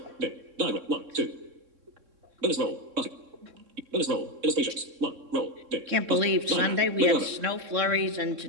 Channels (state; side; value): late; left; 3.6 ms